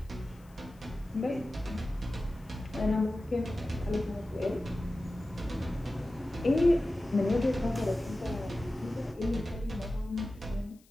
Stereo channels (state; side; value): noise; left; hiss, 30 dB below the sound